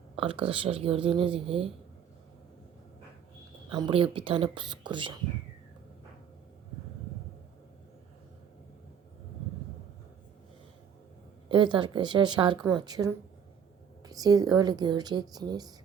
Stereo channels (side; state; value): left; quieter; 7.9 dB